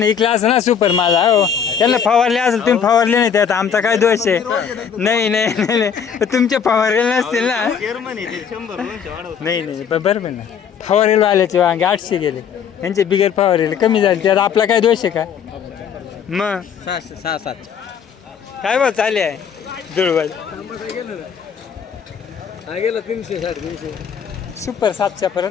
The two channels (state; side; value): quieter; right; 7.5 dB